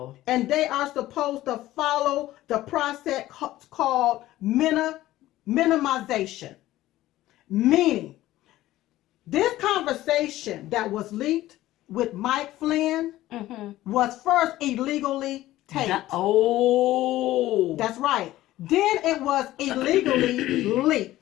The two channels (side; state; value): right; quieter; 15.5 dB